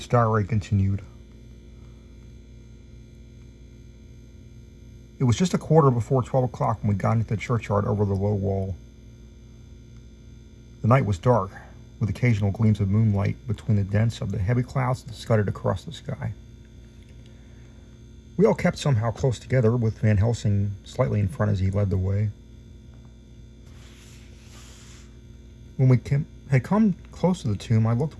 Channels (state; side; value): identical; both; correlation 1.00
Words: diary continued. It was just a quarter before 12 o'clock when we got into the churchyard over the low wall. The night was dark, with occasional gleams of moonlight between the dents of the heavy clouds that scudded across the sky. We all kept somehow close together, with Van Helsing slightly in front as he led the way. When we had come close to the tomb, I looked